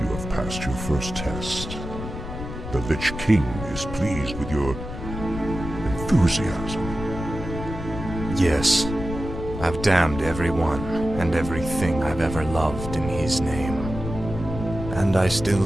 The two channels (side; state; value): left; noise; rumble, 8 dB below the sound